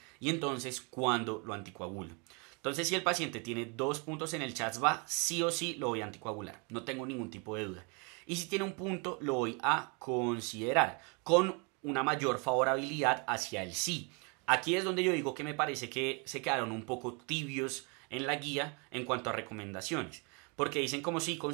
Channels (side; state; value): left; quieter; 33.2 dB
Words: ¿y entonces cuándo lo anticoagulo? Entonces, si el paciente tiene 2 puntos en el CHADS-VA, sí o sí lo voy a anticoagular, no tengo ningún tipo de duda. Y si tiene un punto, lo voy a considerar con una mayor favorabilidad hacia el sí. Aquí es donde yo digo que me parece que se quedaron un poco tibios en la guía en cuanto a recomendaciones. Porque dicen como sí,